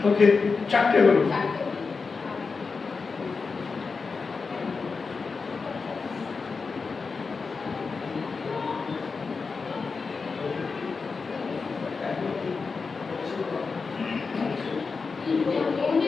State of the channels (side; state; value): right; quieter; 4.7 dB